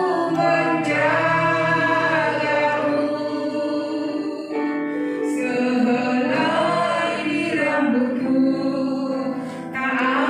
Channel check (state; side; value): identical; both; correlation 1.00